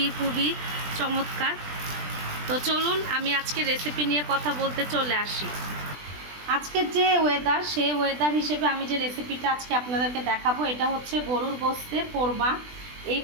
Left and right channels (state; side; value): late; left; 20 ms